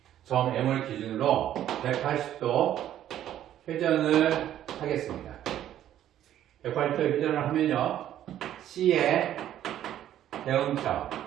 180도 회전을 하겠습니다. 180도 회전을 하면요, C의 대응점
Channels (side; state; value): left; quieter; 11.6 dB